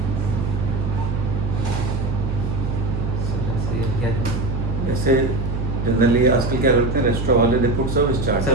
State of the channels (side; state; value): right; noise; hum, 2 dB below the sound